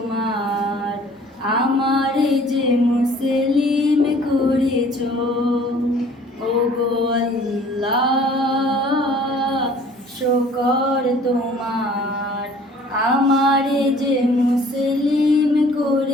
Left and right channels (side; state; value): both; normal; correlation 0.53